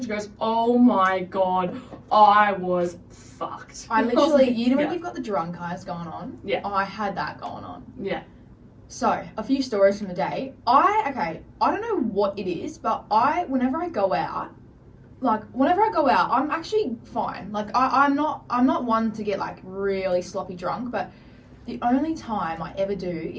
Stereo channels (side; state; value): both; identical; correlation 1.00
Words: she goes, "Oh my god, I was fucked." I was literally, like, you know when yeah. you've got the drunk eyes going on? Yeah. I had that going on. Yeah. So, a few stories from the day. I don't know what it is, but whenever I go out, I'm actually fine. Like, I'm not one to get, like, really sloppy drunk, but the only time I ever do